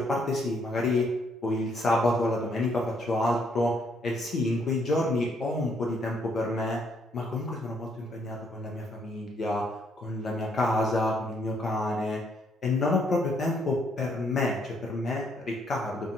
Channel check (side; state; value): both; normal; correlation 0.70